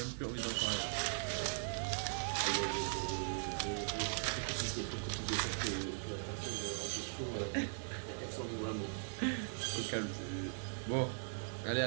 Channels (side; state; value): left; silent; 51 dB below the other